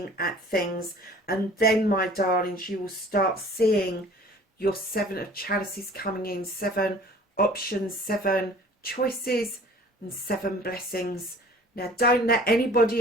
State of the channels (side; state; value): both; normal; correlation 0.49